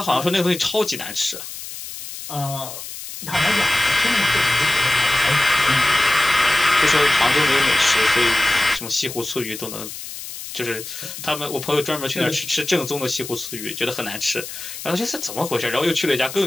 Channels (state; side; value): noise; left; hiss, 10 dB below the sound